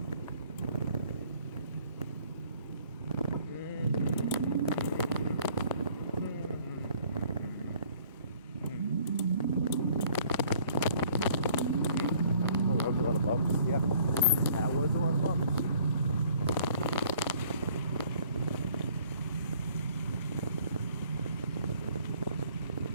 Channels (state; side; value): inverted; both; correlation -0.58